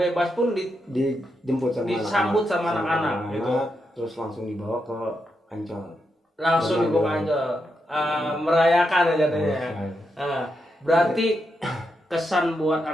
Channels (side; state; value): both; normal; correlation 0.84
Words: pun disambut sama anak-anak gitu. Terus langsung dibawa ke Ancol. Merayakan aja jadinya. Berarti kesan buat